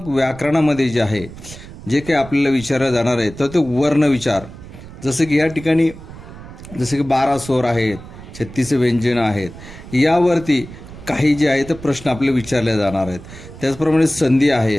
व्याकरणामध्ये जे आहे जे काही आपल्याला विचारलं जाणार आहे तर ते वर्णविचार, जसं की या ठिकाणी जसे की 12 स्वर आहेत, 36 व्यंजनं आहेत, यावरती काही जे आहे ते प्रश्न आपले विचारले जाणार आहेत. त्याचप्रमाणे संधी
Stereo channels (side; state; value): right; noise; rumble, 16 dB below the sound